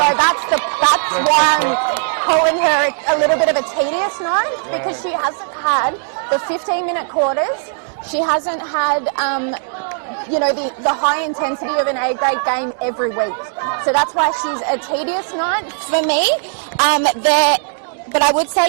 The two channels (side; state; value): left; silent; digital silence